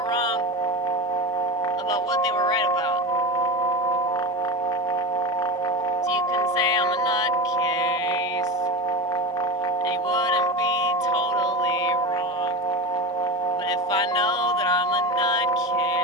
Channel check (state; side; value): normal; both; correlation 0.24